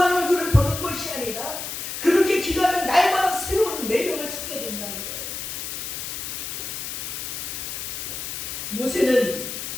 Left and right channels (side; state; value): left; noise; hiss, 6 dB below the sound